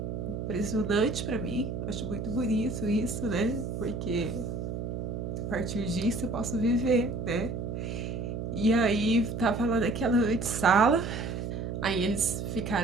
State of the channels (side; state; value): right; noise; hum, 4 dB below the sound